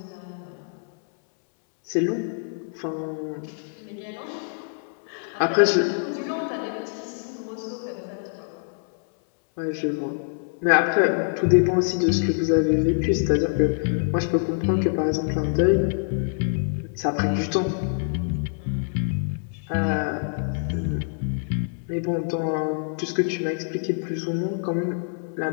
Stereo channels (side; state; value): right; silent; 62 dB below the other